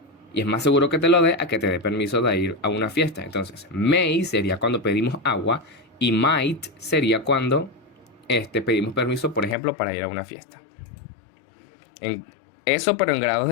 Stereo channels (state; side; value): drops out; right; at 9.6 s